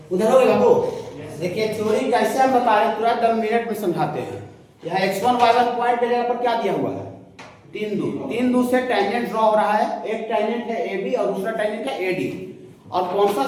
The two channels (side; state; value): both; identical; correlation 1.00